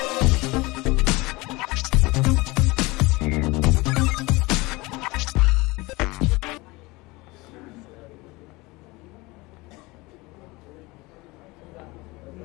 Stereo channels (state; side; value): quieter; right; 22.9 dB